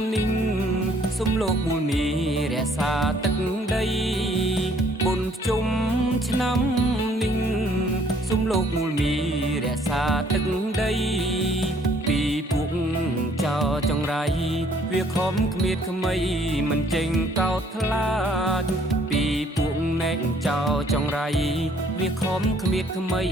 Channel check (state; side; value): normal; both; correlation 0.62